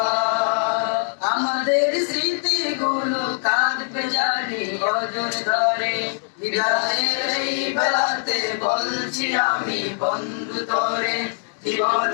আমাদের স্মৃতিগুলো কাঁদবে জানি অজর ধরে, বিদায়ের এই বেলাতে বলছি আমি বন্ধু তোরে,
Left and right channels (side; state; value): right; silent; digital silence